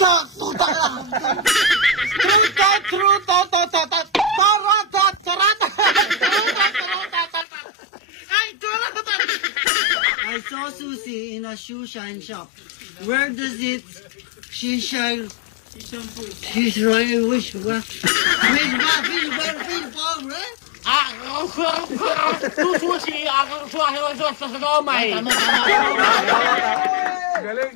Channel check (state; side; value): drops out; right; at 7.5 s